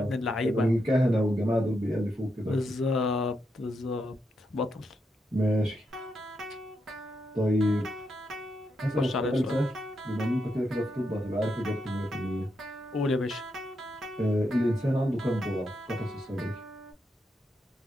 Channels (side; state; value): both; normal; correlation 0.83